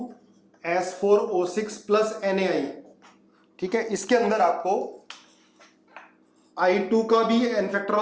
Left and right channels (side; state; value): both; identical; correlation 1.00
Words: प्लस NaI, ठीक है। इसके अंदर आपको I2 का भी एन फैक्टर